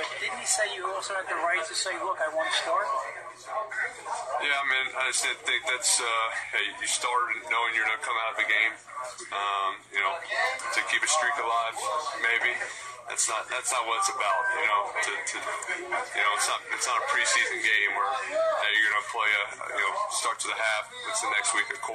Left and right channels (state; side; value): identical; both; correlation 1.00